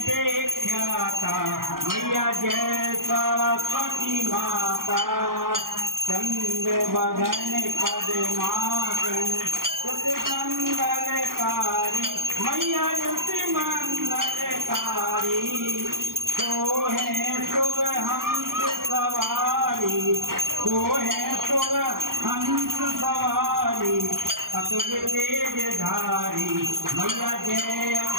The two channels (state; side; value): late; left; 0.91 ms